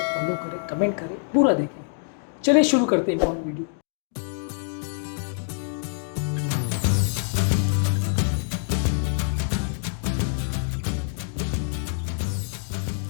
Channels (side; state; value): right; silent; digital silence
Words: फॉलो करें, कमेंट करें, पूरा देखें। चलिए शुरू करते हैं वीडियो।